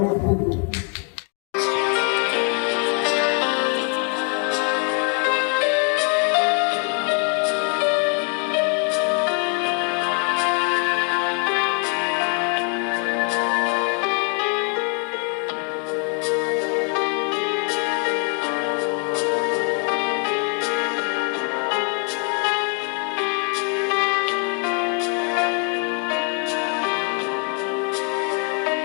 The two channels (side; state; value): right; quieter; 39.0 dB